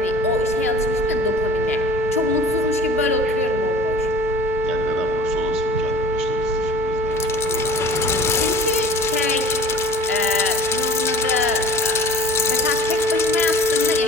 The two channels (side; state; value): both; normal; correlation 0.45